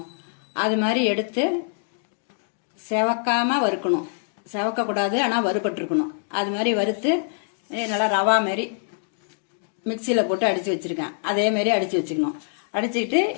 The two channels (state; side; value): silent; right; digital silence